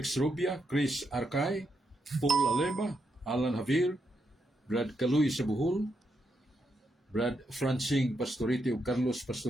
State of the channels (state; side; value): normal; both; correlation 0.81